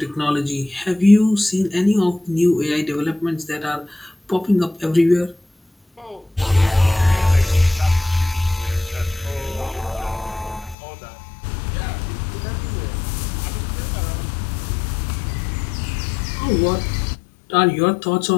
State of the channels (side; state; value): right; drops out; at 10.8 s